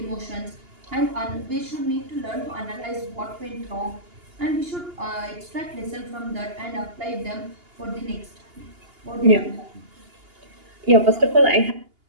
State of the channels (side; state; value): left; late; 2.8 ms